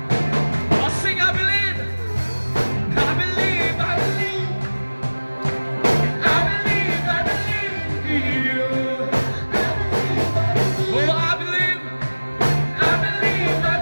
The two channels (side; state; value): both; inverted; correlation -1.00